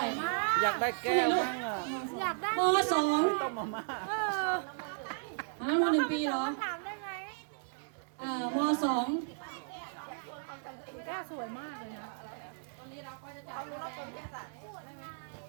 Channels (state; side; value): silent; left; digital silence